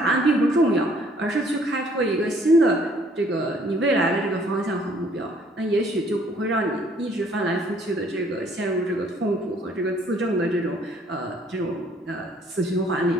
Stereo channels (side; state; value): both; normal; correlation 0.61